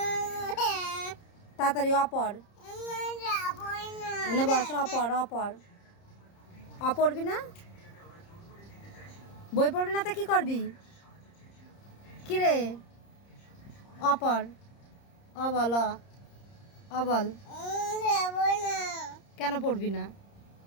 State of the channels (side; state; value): right; late; 30 ms